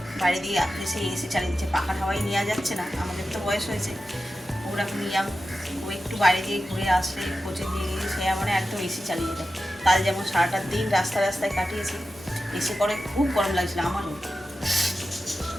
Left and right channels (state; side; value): normal; both; correlation 0.93